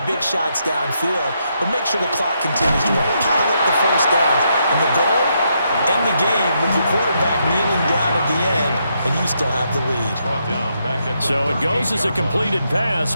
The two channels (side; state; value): both; inverted; correlation -0.78